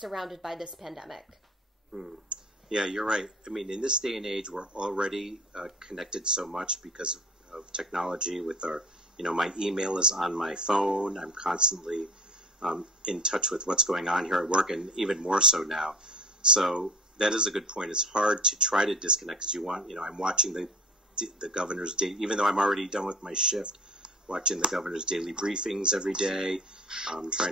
by this pandemic? Yeah, you're right. I mean, in this day and age, we're already connected so much because of technology with our, my email is on my phone. I'm constantly in touch with what's going on here at work, and even more so now. So that is a good point. It's hard to try to disconnect because I'm watching the governor's day, even though I'm already done with my shift, watching the governor's daily briefings every day,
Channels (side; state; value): both; normal; correlation 0.40